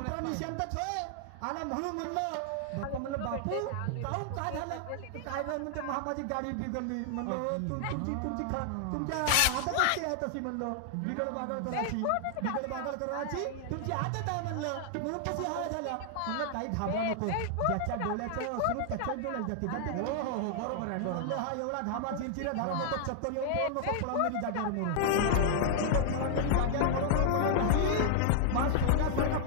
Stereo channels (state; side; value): different; both; correlation 0.00